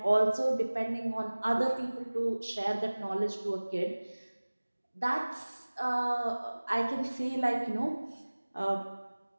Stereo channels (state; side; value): inverted; both; correlation -1.00